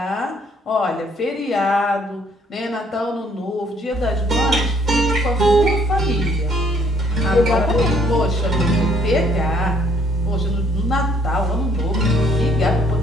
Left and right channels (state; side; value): normal; both; correlation 0.64